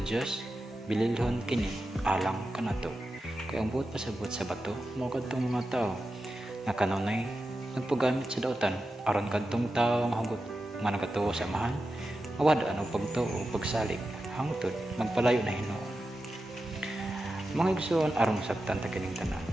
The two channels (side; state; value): both; normal; correlation 0.91